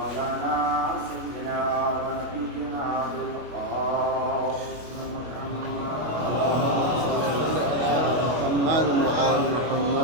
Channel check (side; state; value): left; late; 25 ms